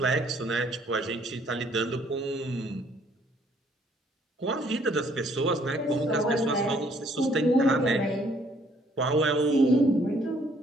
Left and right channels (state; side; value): normal; both; correlation 0.64